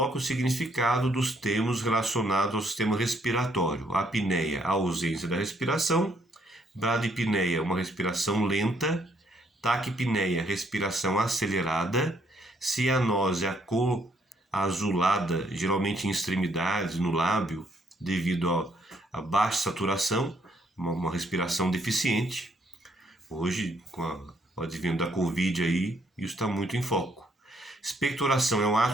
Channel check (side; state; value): both; normal; correlation 0.70